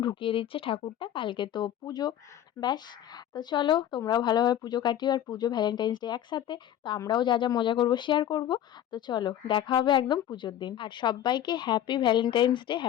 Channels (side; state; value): right; quieter; 11.3 dB